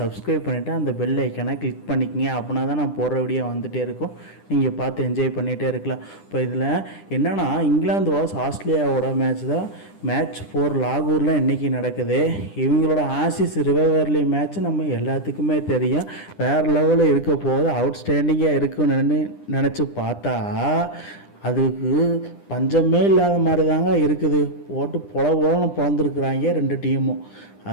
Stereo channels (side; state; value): right; late; 10 ms